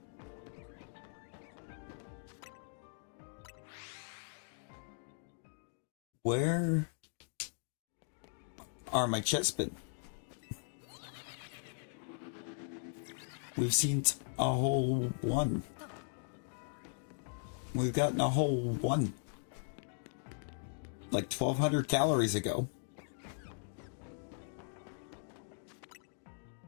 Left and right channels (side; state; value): right; silent; digital silence